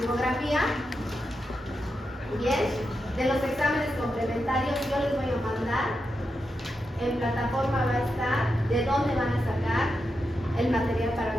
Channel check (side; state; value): both; normal; correlation 0.87